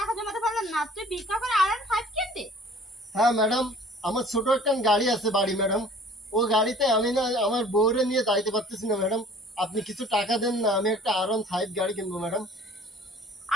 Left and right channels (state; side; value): normal; both; correlation 0.50